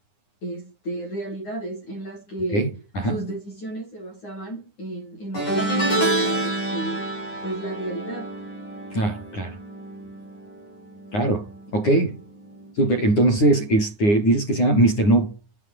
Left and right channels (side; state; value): right; late; 9.7 ms